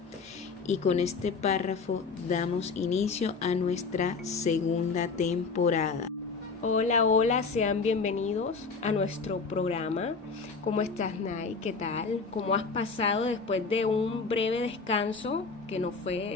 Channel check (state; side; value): quieter; right; 4.6 dB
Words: Y con este párrafo damos inicio a nuestra segunda temporada. Hola, sean bienvenidos a nuestro programa. ¿Cómo estás, Nay? ¿Qué tal? ¿Cómo has pasado después de un breve descanso? Que no